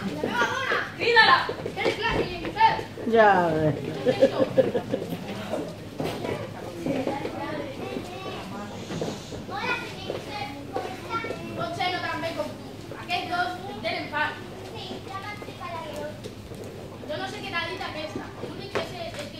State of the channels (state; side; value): identical; both; correlation 1.00